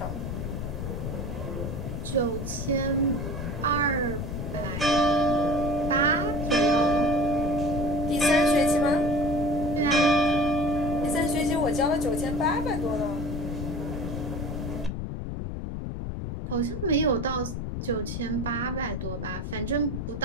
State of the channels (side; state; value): left; noise; rumble, 5 dB below the sound